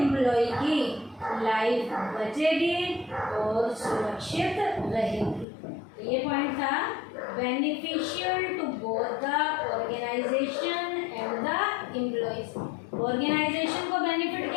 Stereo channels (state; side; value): drops out; right; at 5.5 s